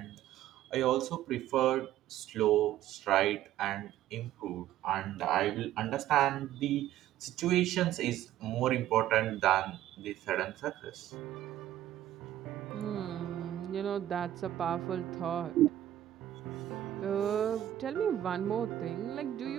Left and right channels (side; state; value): left; quieter; 12.7 dB